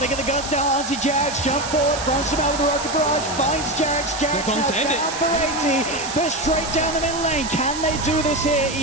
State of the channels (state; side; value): noise; right; hiss, 9 dB below the sound